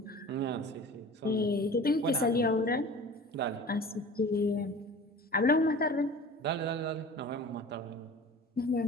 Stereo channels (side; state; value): both; normal; correlation 0.40